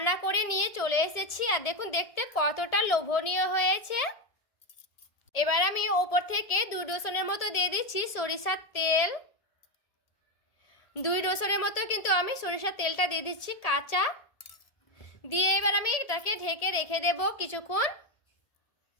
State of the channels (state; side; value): late; right; 1.7 ms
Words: করে নিয়ে চলে এসেছি। আর দেখুন দেখতে কতটা লোভনীয় হয়েছে। এবার আমি ওপর থেকে 2 ডোসনের মতো দিয়ে দিচ্ছি সরিষার তেল। 2 ডোসনের মতো কিন্তু আমি সরিষার তেলটা দিয়ে দিচ্ছি কাঁচা। দিয়ে এবার আমি এটাকে ঢেকে রেখে দেব কিছুক্ষণ।